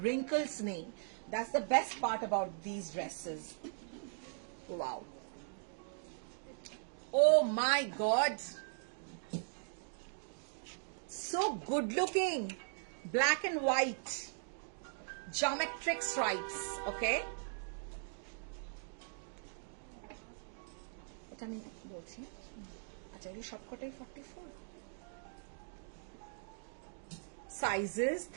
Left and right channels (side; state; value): left; silent; digital silence